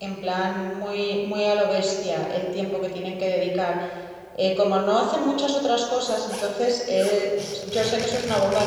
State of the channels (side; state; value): both; identical; correlation 1.00